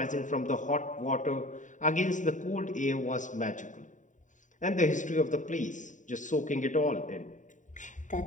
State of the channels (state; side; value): late; right; 0.36 ms